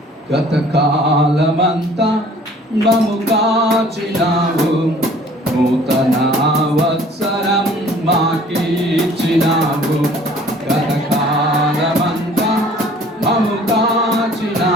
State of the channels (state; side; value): normal; both; correlation 0.53